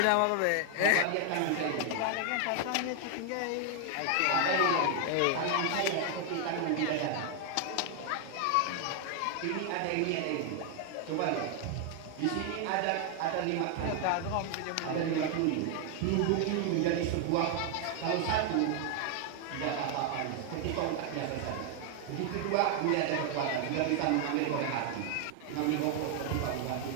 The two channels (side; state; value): both; different; correlation 0.00